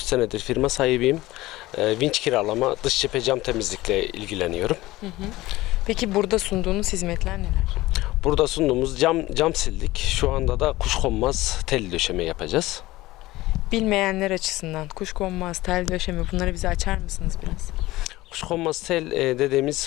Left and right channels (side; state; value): right; quieter; 18.2 dB